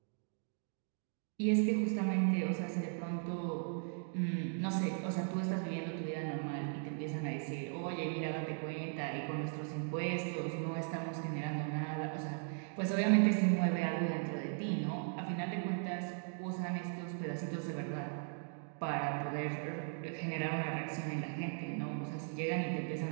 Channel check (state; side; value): silent; left; 52 dB below the other